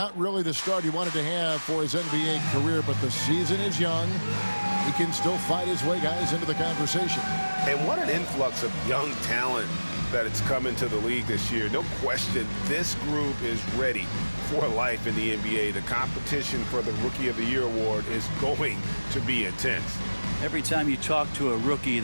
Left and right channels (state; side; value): inverted; both; correlation -1.00